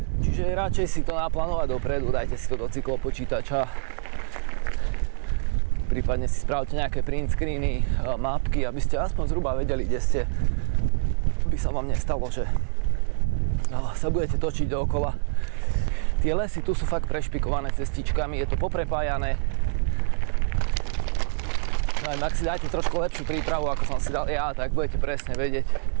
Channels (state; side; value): silent; left; 61 dB below the other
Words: Čiže radšej si to naplánovať dopredu, dajte si to do cyklopočítača. Prípadne si spravte nejaké print screeny, mapky, aby ste aspoň zhruba vedeli, kde ste. By sa vám nestalo, že sa budete točiť dookola. Tie lesy tu sú fakt prešpikované cestičkami, je to poprepájané. No aj ak si dáte trošku lepšiu prípravu, ako som si dal ja, tak budete presne vedieť,